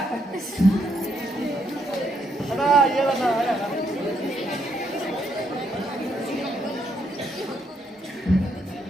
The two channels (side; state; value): both; normal; correlation 0.74